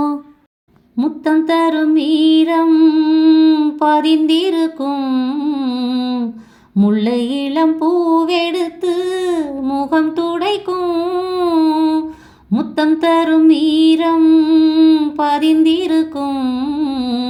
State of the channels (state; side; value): identical; both; correlation 1.00